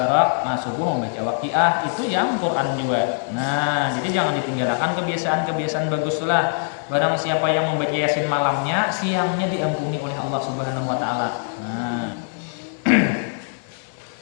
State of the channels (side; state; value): right; silent; digital silence